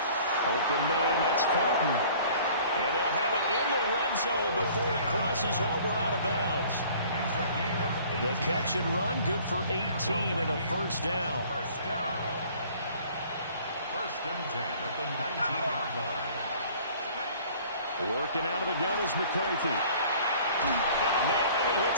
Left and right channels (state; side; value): inverted; both; correlation -0.51